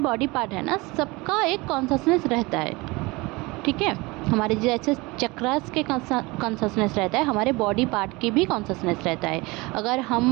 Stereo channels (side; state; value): left; quieter; 23.7 dB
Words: बॉडी पार्ट है ना, सबका एक कॉन्शसनेस रहता है। ठीक है, हमारे जैसे चक्रास के कॉन्शसनेस रहता है, हमारे बॉडी पार्ट की भी कॉन्शसनेस रहता है। अगर